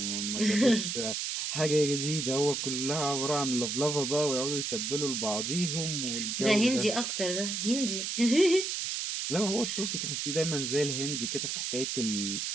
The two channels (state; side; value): noise; right; hiss, 2 dB below the sound